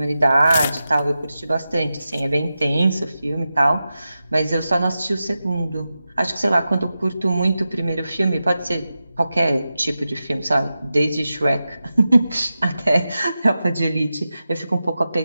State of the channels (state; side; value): inverted; both; correlation -0.92